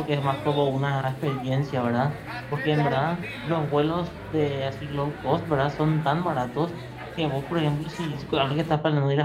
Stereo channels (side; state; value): both; identical; correlation 1.00